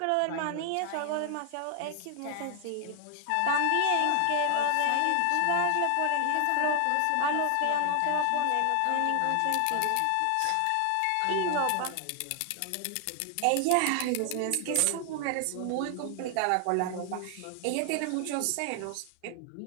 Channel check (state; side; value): different; both; correlation 0.00